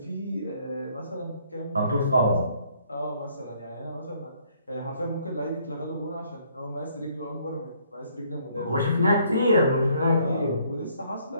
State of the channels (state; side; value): inverted; both; correlation -0.65